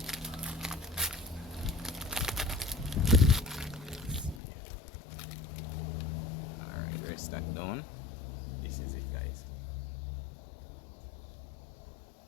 Alright, rest that down. This is it, guys.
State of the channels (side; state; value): right; drops out; at 4.4 s